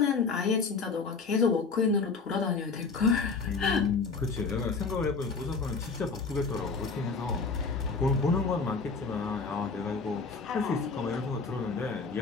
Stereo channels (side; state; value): right; quieter; 4.6 dB